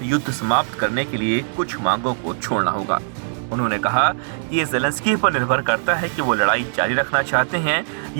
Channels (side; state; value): left; silent; digital silence